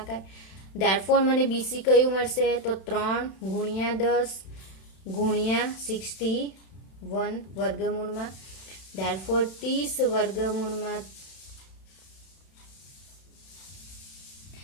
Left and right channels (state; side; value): late; right; 31 ms